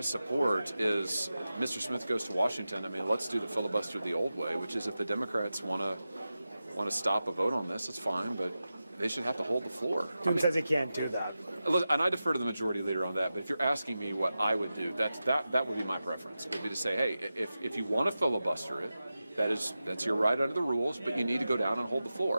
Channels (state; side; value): inverted; both; correlation -0.93